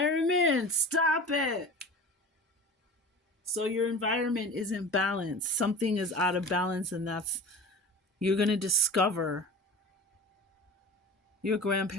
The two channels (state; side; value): normal; both; correlation 0.35